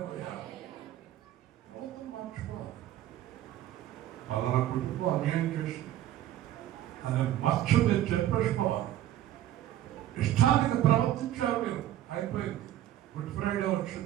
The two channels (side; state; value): left; quieter; 12.9 dB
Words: ప్రవర్తన మార్చుకోవాలి. పలానా కుటుంబం అన్యాయం చేసి అనే మచ్చ మీరు చెప్పేసుకోవాలి. ఇష్టానికి ప్రవర్తించారు మీరు, అయిపోయింది. గుడ్ ఫ్రైడే